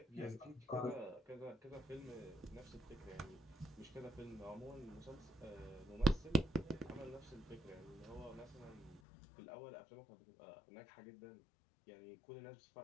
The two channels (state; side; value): drops out; right; at 9.0 s